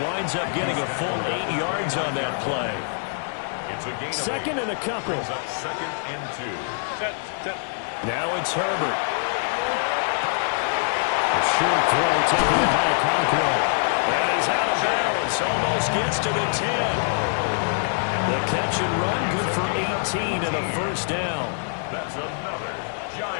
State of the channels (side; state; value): right; silent; digital silence